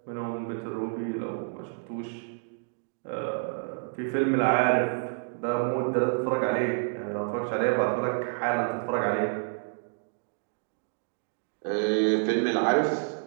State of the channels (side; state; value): left; silent; digital silence